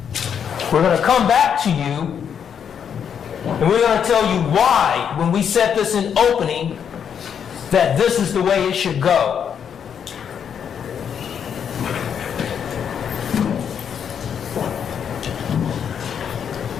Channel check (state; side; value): quieter; right; 7.9 dB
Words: we're going to come back to you and we're going to tell you why, when we set this in opening, that this is the way it should go.